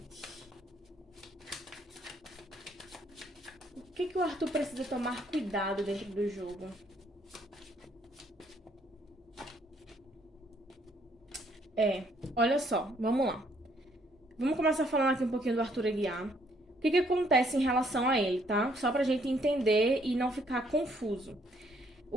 O que o Arthur precisa tomar cuidado dentro do jogo? Olha só, vamos lá. Vamos começar falando aqui um pouquinho do Arthur Aguiar. O que acontece em relação a ele, tá? Só pra gente entender e não ficar confuso.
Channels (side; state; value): both; normal; correlation 0.67